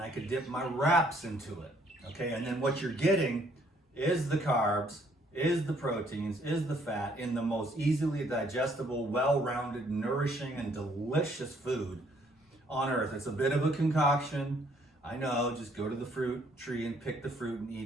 could dip my wraps into it, okay? And then what you're getting is the carbs, is the proteins, is the fat in the most easily digestible, well-rounded, nourishing, and delicious food on earth. It's a bit of a concoction. I know, just go to the fruit tree and pick the fruit and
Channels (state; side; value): normal; both; correlation 0.65